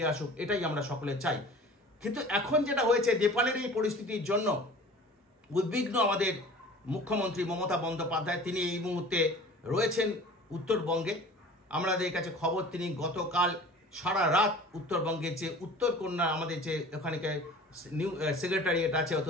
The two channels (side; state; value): both; normal; correlation 0.43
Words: আসুক, এটাই আমরা সকলে চাই। কিন্তু এখন যেটা হয়েছে, নেপালের এই পরিস্থিতির জন্য উদ্বিগ্ন আমাদের মুখ্যমন্ত্রী মমতা বন্দ্যোপাধ্যায়। তিনি এই মুহূর্তে রয়েছেন উত্তরবঙ্গে। আমাদের কাছে খবর তিনি গতকাল সারা রাত উত্তরবঙ্গের যে উত্তরকন্যা আমাদের যে ওখানকার নিউ সেক্রেটারিয়েট আছে,